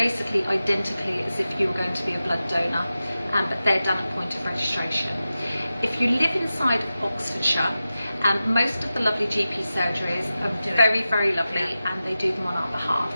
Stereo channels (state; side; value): inverted; both; correlation -0.93